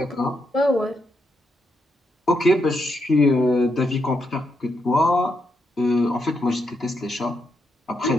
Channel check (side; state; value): both; normal; correlation 0.80